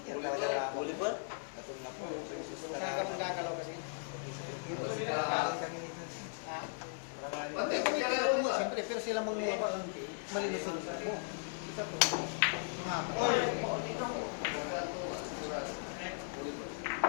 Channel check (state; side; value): silent; right; digital silence